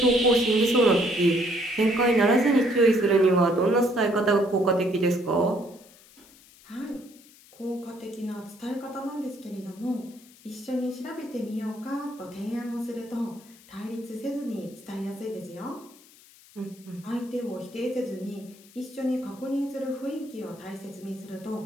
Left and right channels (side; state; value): left; noise; hiss, 24 dB below the sound